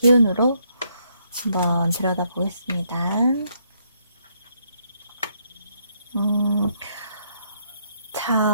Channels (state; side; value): inverted; both; correlation -0.73